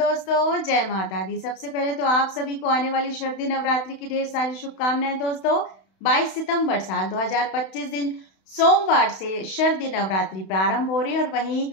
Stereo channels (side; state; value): right; late; 31 ms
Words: जय माता दी। सबसे पहले तो आप सभी को आने वाली शरदी नवरात्रि की ढेर सारी शुभकामनाएं दोस्तों। 22 सितंबर साल 2025 दिन सोमवार से शरदी नवरात्रि प्रारंभ हो रही है और वहीं